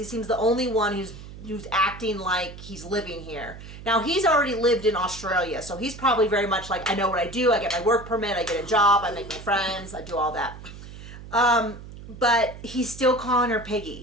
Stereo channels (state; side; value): noise; right; hum, 14 dB below the sound